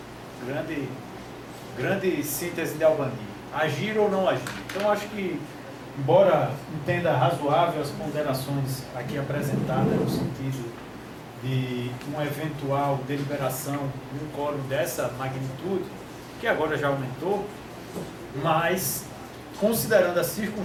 grande síntese de Albani. Agir ou não agir. Então eu acho que, embora entenda razoável as ponderações aqui apresentadas no sentido de uma eventual deliberação de um quórum dessa magnitude, que agora já aumentou, mas considerando as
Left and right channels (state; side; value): identical; both; correlation 1.00